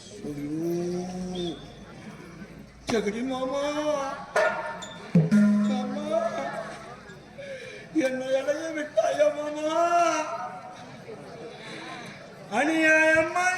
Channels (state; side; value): identical; both; correlation 1.00